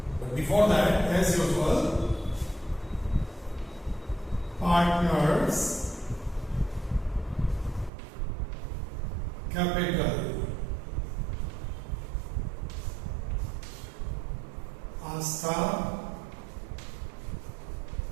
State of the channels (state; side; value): drops out; left; at 7.9 s